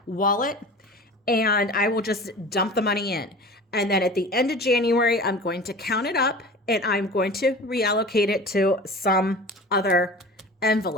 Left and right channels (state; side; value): normal; both; correlation 0.37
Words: wallet, and I will just dump the money in. And then at the end of January, I'm going to count it up and I'm going to reallocate it to some other